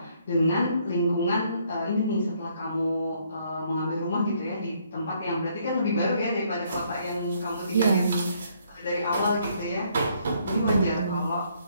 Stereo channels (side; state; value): both; inverted; correlation -0.68